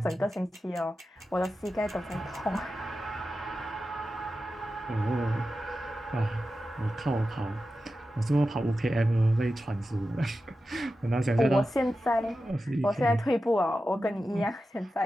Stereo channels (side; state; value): both; normal; correlation 0.92